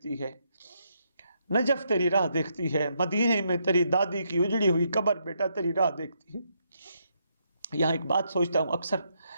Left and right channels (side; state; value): both; inverted; correlation -0.77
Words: ہے، نجف تیری راہ دیکھتی ہے، مدینے میں تیری دادی کی اجڑی ہوئی قبر بیٹا تیری راہ دیکھتی ہے. یہاں ایک بات سوچتا ہوں، اکثر